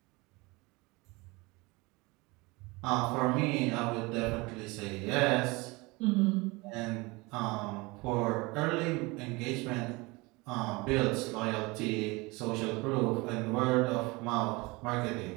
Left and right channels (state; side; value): quieter; left; 24.6 dB